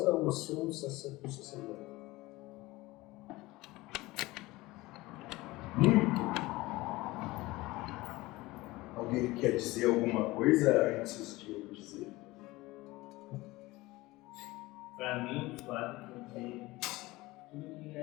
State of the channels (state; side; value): quieter; right; 20.1 dB